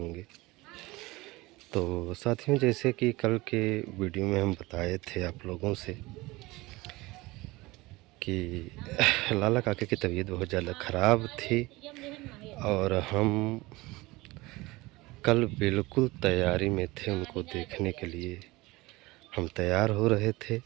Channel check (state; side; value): quieter; left; 21.3 dB